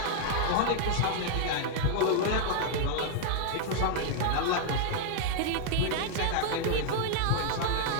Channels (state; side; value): different; both; correlation 0.00